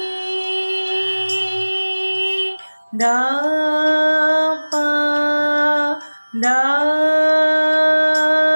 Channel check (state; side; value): inverted; both; correlation -1.00